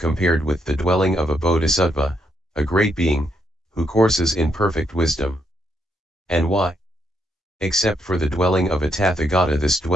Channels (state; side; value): normal; both; correlation 0.77